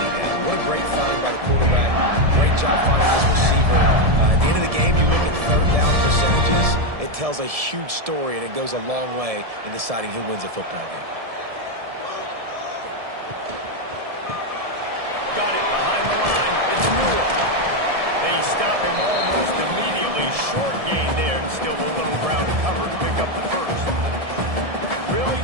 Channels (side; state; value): left; late; 1.7 ms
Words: down. What a great find by the quarterback. Great job finding his receiver. At the end of the game, you look at 3rd down percentages. It tells a huge story, and it goes a long way in deciding who wins a football game. Got it behind the line. It's Newell. They stop him almost immediately. Short gain there, and still a little ground to cover to pick up the first. Really